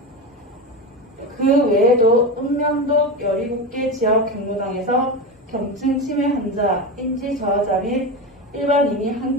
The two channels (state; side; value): normal; both; correlation 0.20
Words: 그 외에도 읍면동 17개 지역 경로당에서 경증 치매 환자, 인지 저하자 및 일반인이